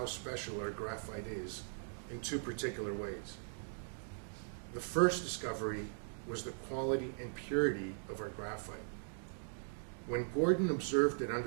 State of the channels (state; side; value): silent; left; digital silence